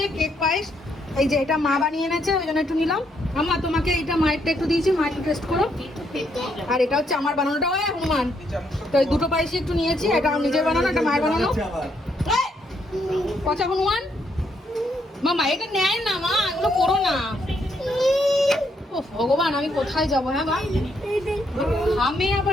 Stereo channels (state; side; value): normal; both; correlation 0.74